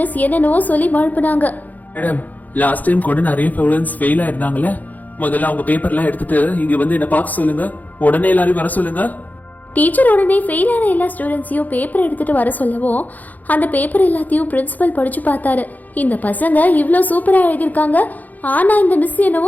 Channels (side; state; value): right; late; 0.081 ms